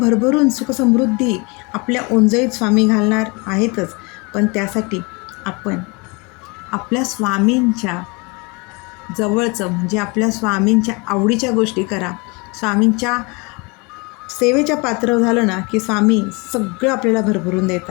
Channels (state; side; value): quieter; right; 28.7 dB